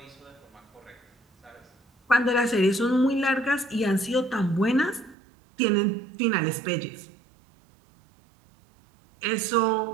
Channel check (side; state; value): left; drops out; at 5.2 s